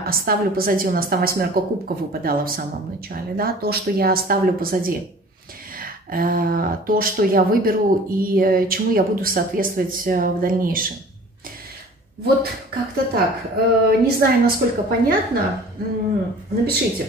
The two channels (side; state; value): both; normal; correlation 0.46